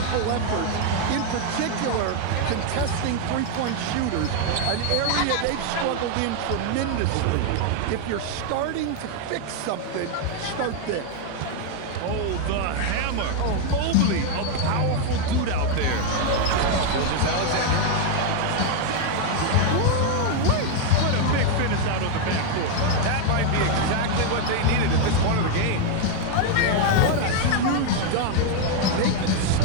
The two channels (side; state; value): both; different; correlation 0.01